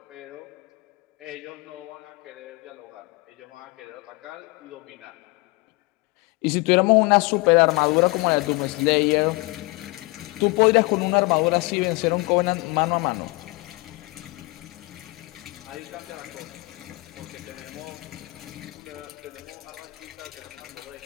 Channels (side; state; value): right; quieter; 25.4 dB